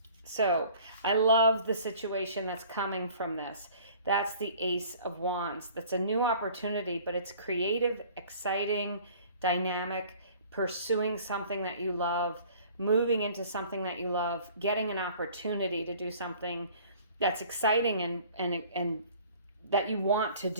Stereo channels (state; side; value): inverted; both; correlation -0.50